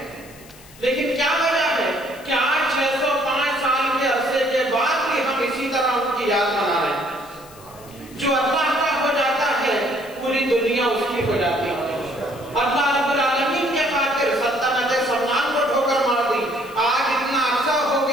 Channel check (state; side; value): noise; left; hiss, 22 dB below the sound